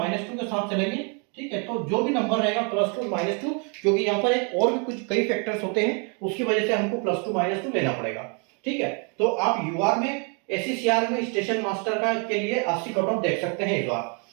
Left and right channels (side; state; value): left; quieter; 36.4 dB